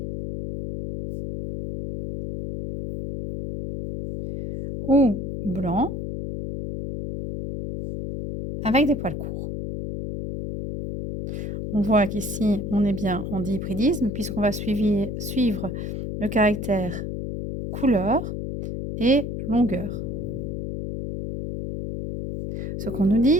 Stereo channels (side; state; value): left; noise; hum, 5 dB below the sound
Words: ou blancs, avec des poils courts. On voit qu'ici, on est bien en dihybridisme, puisqu'on va suivre le caractère couleur et longueur. Ce qu'on nous